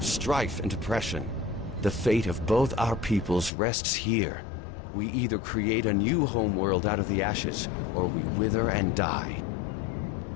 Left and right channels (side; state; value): right; drops out; at 3.5 s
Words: strife and oppression. The fate of both our peoples rests here. We either create a new homeworld out of the ashes, or we wither and die.